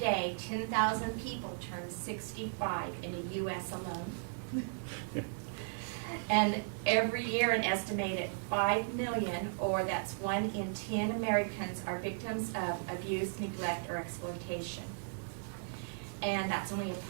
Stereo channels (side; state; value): left; silent; digital silence